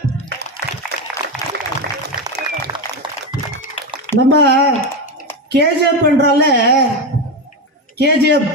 நம்ம கேஜிஎஃப் என்றால கேஜிஎஃப்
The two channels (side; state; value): both; normal; correlation 0.15